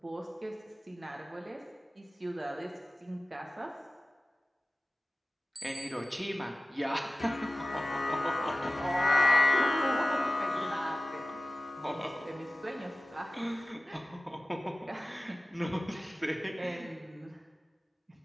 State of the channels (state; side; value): normal; both; correlation 0.96